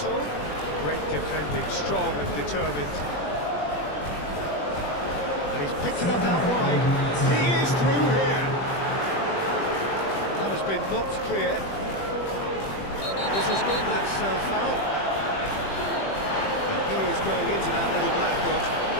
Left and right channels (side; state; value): right; late; 21 ms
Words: Great defending, strong and determined. And he's picked it up out wide. He is through here. That has been knocked clear. This has gone, that's foul. And he is going into that little black book.